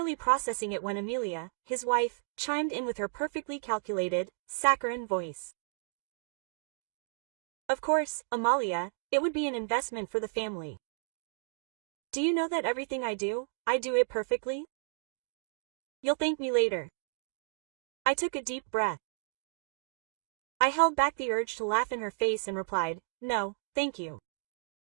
processing it when Amelia, his wife, chimed in with her perfectly calculated, saccharine voice. Of course, Amalia, it would be an investment for the family. Do you know that everything I do it perfectly? You'll thank me later. I took a deep breath. I held back the urge to laugh in her face and replied, no, thank you.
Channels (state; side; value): silent; left; digital silence